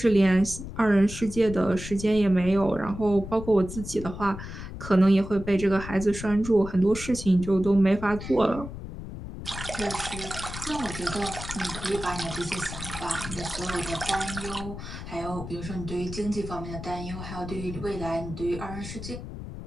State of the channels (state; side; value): noise; left; rumble, 10 dB below the sound